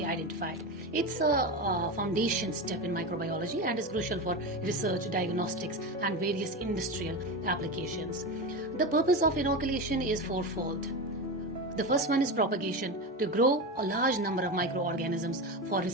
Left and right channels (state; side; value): normal; both; correlation 0.20